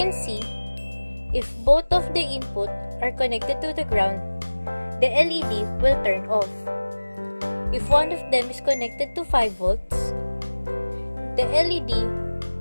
see, if both of the input are connected to the ground, the LED will turn off. If one of them is connected to 5 volts, the LED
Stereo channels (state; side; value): inverted; both; correlation -1.00